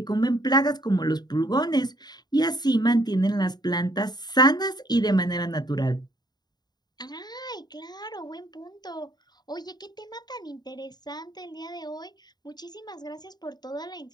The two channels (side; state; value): right; late; 0.20 ms